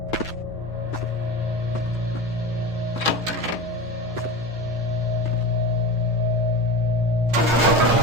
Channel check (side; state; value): both; normal; correlation 0.27